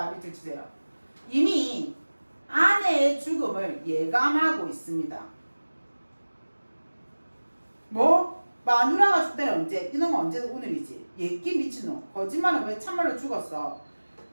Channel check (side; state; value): both; inverted; correlation -1.00